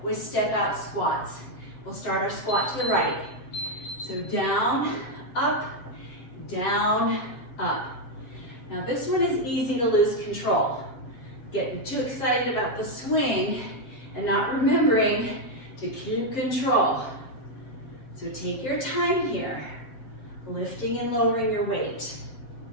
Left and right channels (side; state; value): right; late; 7.6 ms